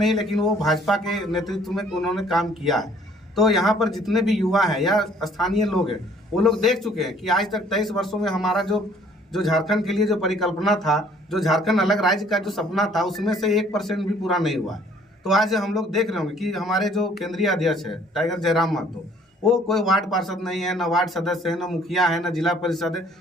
लेकिन वो भाजपा के नेतृत्व में उन्होंने काम किया है। तो यहाँ पर जितने भी युवा हैं या स्थानीय लोग हैं, वो लोग देख चुके हैं कि आज तक 23 वर्षों में हमारा जो झारखंड के लिए जो परिकल्पना था, जो झारखंड अलग राज्य का जो सपना था, उसमें से 1% भी पूरा नहीं हुआ है। तो आज हम लोग देख रहे होंगे कि हमारे जो केंद्रीय अध्यक्ष है टाइगर जयराम महतो, वो कोई वार्ड पार्षद नहीं है, ना वार्ड सदस्य है, ना मुखिया है, ना जिला परिषद है,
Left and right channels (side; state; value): both; normal; correlation 0.58